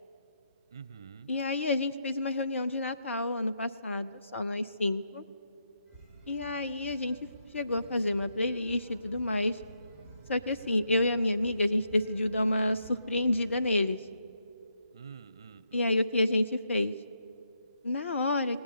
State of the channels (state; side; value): inverted; both; correlation -0.79